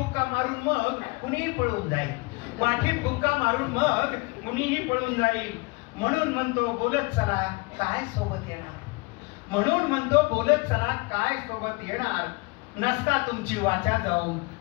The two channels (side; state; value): right; quieter; 27.2 dB